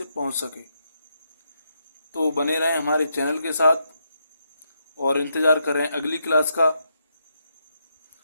पहुंच सके। तो बने रहें हमारे चैनल के साथ और इंतज़ार करें अगली क्लास का।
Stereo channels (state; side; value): inverted; both; correlation -0.80